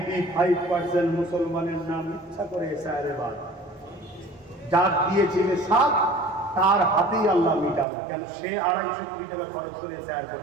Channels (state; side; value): drops out; left; at 7.9 s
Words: মুসলমানের নাম ইচ্ছা করে এসআইআর বাদ, যার দিয়েছিল সাথ তার হাতেই আল্লাহ মিটালো। কেন? সে 250 কোটি টাকা খরচ করে এসআইআর